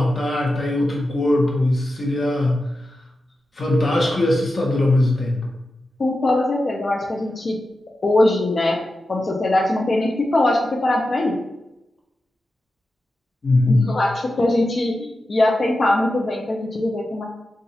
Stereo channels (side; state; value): both; normal; correlation 0.91